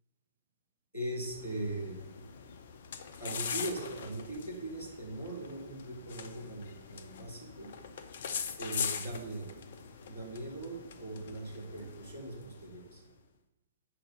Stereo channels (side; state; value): both; inverted; correlation -0.59